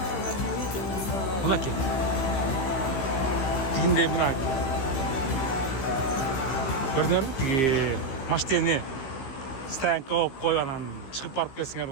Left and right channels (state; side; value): late; right; 15 ms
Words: Buna ki. Dinde buna. Gördünüz mü? Maşteni stoyanka koyup koyup çıkıp barıp kelsiңер